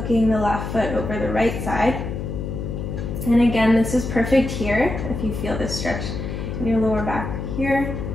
the left foot over the right side. And again, this is perfect here if you feel this stretch in your lower back here,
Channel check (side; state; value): left; noise; hum, 5 dB below the sound